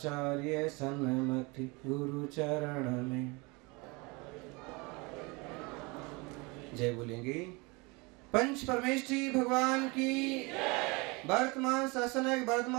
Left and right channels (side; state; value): left; quieter; 27.2 dB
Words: सन्मति गुरु चरण में जय बोलेंगे। पंच परमेष्ठी भगवान की, वर्तमान शासनक